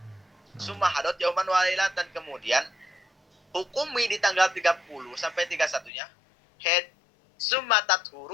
Summa hadot yauman walailatan, kemudian hukumi di tanggal 30 sampai 31-nya haid. Summa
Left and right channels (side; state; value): right; drops out; at 5.9 s